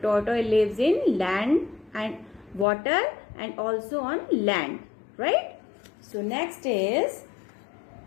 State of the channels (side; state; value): right; drops out; at 2.7 s